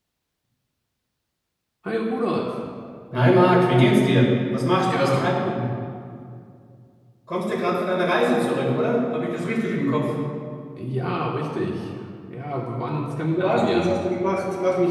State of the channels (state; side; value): identical; both; correlation 1.00